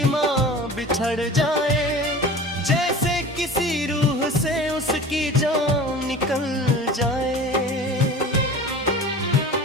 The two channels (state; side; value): normal; both; correlation 0.38